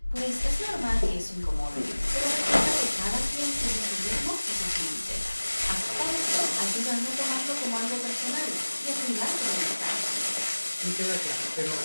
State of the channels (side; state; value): both; inverted; correlation -1.00